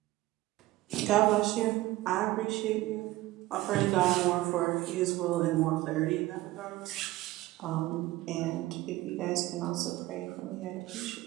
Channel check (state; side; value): quieter; left; 17.5 dB